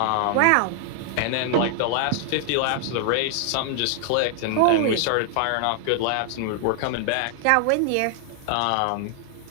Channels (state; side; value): different; both; correlation 0.00